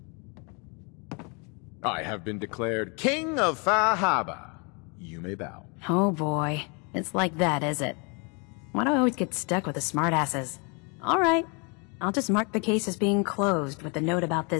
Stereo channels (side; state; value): right; quieter; 33.2 dB